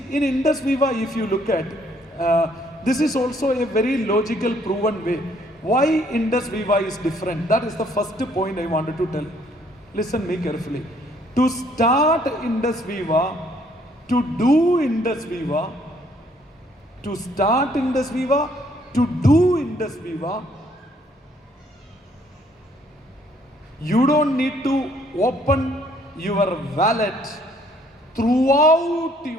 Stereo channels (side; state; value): both; normal; correlation 0.65